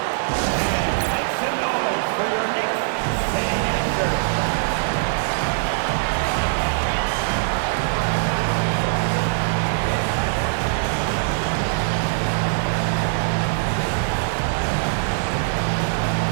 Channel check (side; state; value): left; silent; 64 dB below the other